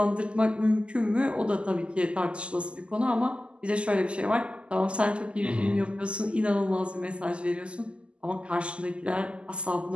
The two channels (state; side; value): late; left; 0.053 ms